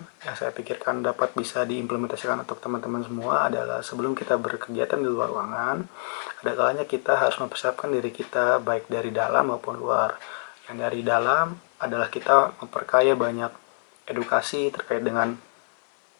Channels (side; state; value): right; silent; 61 dB below the other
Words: yang saya pikirkan dapat bisa diimplementasikan untuk teman-teman semua adalah sebelum kita berkegiatan di luar ruangan, ada kalanya kita harus mempersiapkan diri kita baik dari dalam maupun luar. Yang dari dalam adalah kita memperkaya banyak edukasi terkait dengan